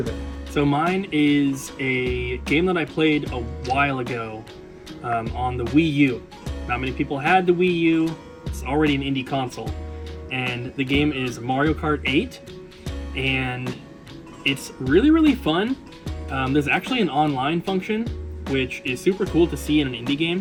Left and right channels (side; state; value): both; identical; correlation 1.00